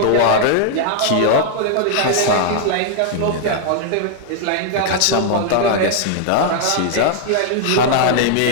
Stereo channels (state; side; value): different; both; correlation -0.01